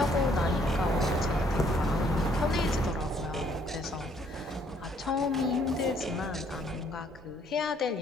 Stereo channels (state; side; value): normal; both; correlation 0.65